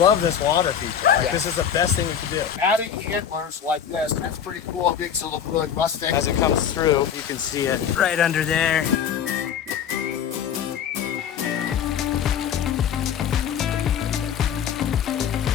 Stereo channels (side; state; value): right; quieter; 8.5 dB